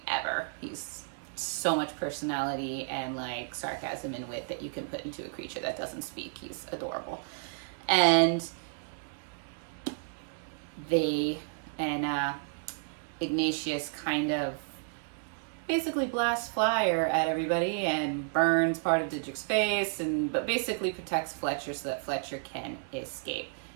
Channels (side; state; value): left; silent; digital silence